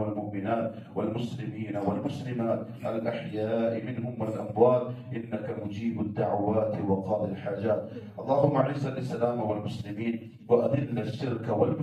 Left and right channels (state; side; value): identical; both; correlation 1.00